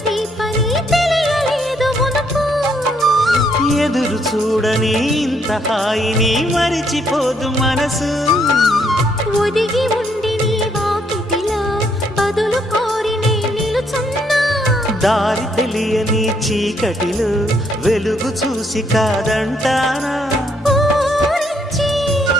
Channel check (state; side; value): normal; both; correlation 0.71